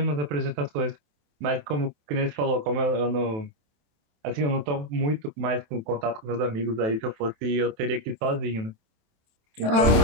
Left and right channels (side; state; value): left; late; 27 ms